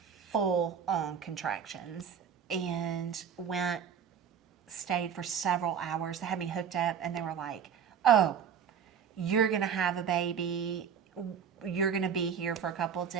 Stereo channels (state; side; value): quieter; left; 7.6 dB